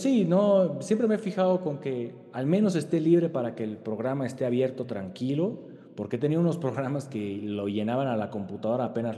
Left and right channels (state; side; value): identical; both; correlation 1.00